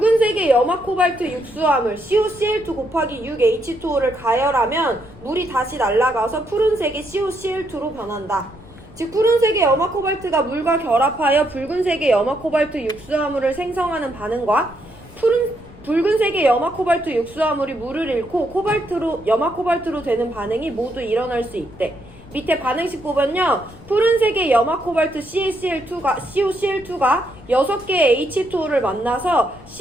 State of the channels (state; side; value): noise; left; rumble, 21 dB below the sound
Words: 염화 코발트 육수화물 COCl2 곱하기 6H2O를 가열하면 물이 다시 날아가서 푸른색의 COCl2로 변한다. 즉 푸른색의 염화 코발트가 물과 결합하여 붉은색의 염화 코발트 육수화물을 생성하는 반응과 붉은색의 염화 코발트 육수화물이 물을 잃고 염화 코발트로 되는 반응이 모두 일어날 수 있대. 밑에 반응식 보면요, 푸른색의 염화 코발트 COCl2가 6개의 H2O를 만나서